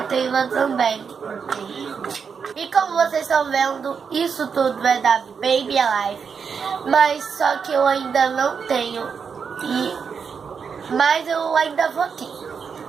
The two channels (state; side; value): quieter; left; 6.2 dB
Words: também. E como vocês estão vendo, isso tudo é da Baby Alive. Mas só que eu ainda não tenho. Mas eu ainda vou ter.